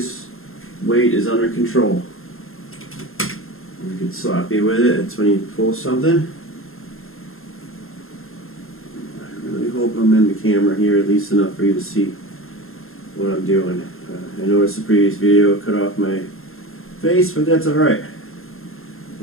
weight is under control. You get sloppy with it. It's when you pull something. I really hope I'm in the camera here at least enough for you to see what I'm doing. I noticed the previous video cut off my face, but that's alright.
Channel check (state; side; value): late; right; 0.61 ms